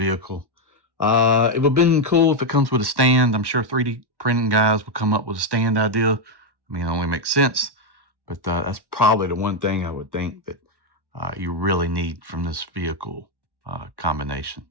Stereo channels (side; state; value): left; late; 1.1 ms